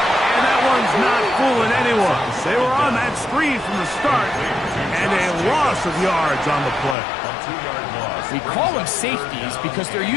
And that one's not fooling anyone. They were on that screen from the start, and a loss of yards on the play. We call them safeties because they're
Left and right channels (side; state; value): right; drops out; at 7.0 s